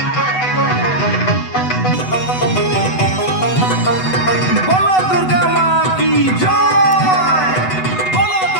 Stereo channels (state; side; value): late; right; 8.0 ms